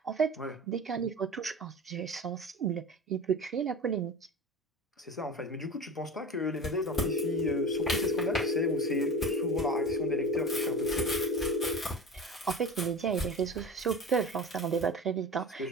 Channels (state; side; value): normal; both; correlation 0.32